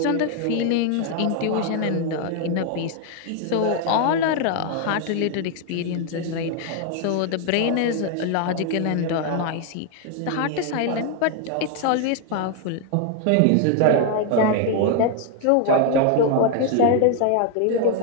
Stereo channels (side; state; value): both; different; correlation 0.00